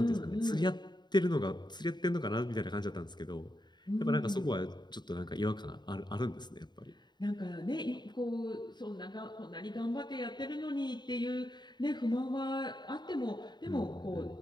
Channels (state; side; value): late; right; 0.21 ms